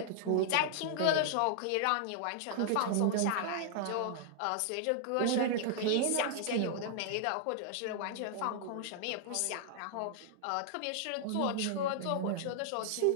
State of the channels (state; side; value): different; both; correlation -0.01